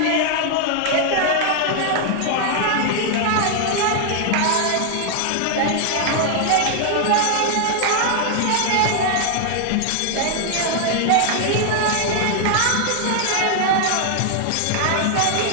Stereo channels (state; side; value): different; both; correlation 0.00